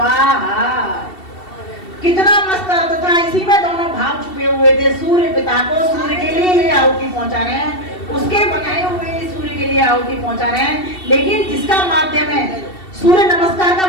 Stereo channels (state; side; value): late; right; 2.7 ms